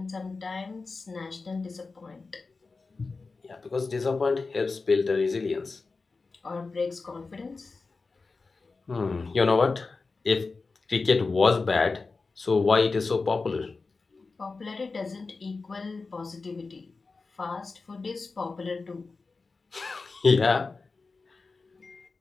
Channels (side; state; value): right; quieter; 4.1 dB